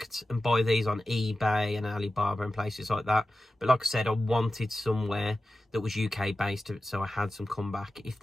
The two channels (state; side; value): normal; both; correlation 0.94